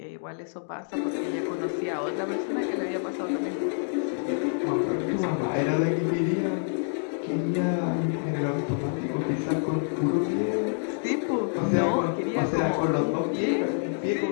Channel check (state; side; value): silent; right; digital silence